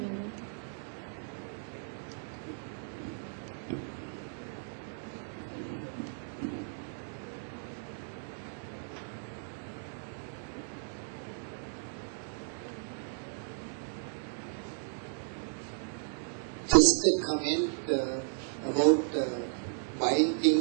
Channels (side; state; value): left; silent; 54 dB below the other